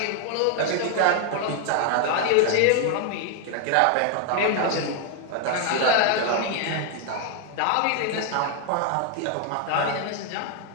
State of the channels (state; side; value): different; both; correlation 0.00